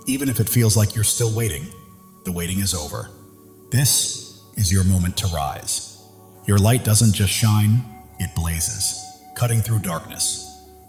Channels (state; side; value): identical; both; correlation 1.00